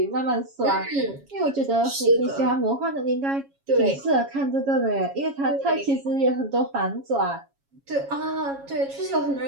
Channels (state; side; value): late; left; 7.3 ms